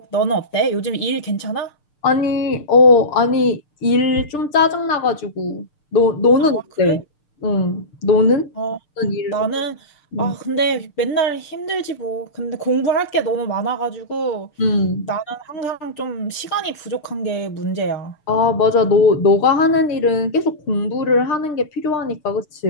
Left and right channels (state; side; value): late; right; 6.7 ms